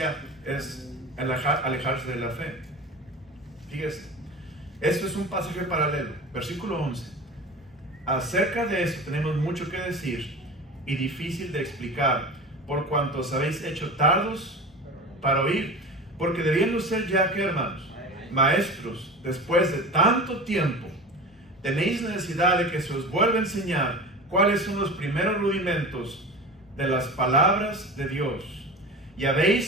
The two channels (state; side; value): normal; both; correlation 0.32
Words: es alejarse de la fe. Fíjese, esto es un pasaje paralelo, versículo 11. Acerca de esto tenemos mucho que decir y difícil de explicar, por cuanto os habéis hecho tardos para oír, porque debiendo ser ya, ¿qué, hermanos? Maestros, después de tanto tiempo, tenéis necesidad de que se os vuelva a enseñar cuáles son los primeros rudimentos de las palabras de Dios. Y